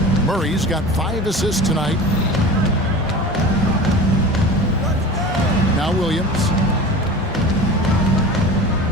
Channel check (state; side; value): normal; both; correlation 0.36